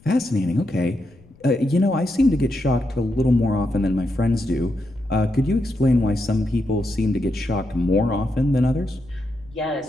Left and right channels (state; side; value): noise; left; rumble, 26 dB below the sound